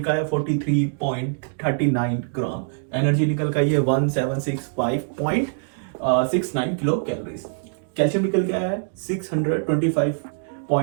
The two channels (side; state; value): left; silent; digital silence